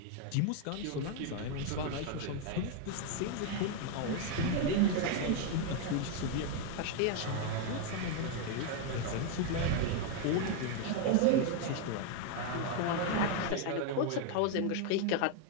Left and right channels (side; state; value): both; different; correlation 0.01